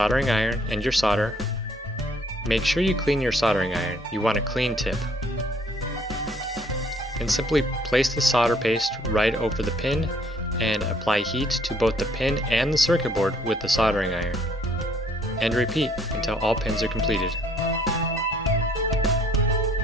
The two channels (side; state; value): both; normal; correlation 0.62